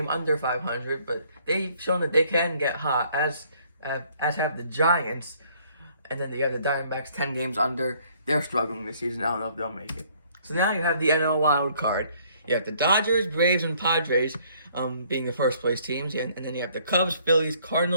under 500, but they've shown that they can get hot, as have the Giants. And then you have the Diamondbacks 10 games under. They're struggling this season. I don't know if they'll make it. So now you have the NL wild card. You have the Dodgers, Braves, and Padres being the first place teams, and then you have the Cubs, Phillies,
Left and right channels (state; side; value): inverted; both; correlation -0.62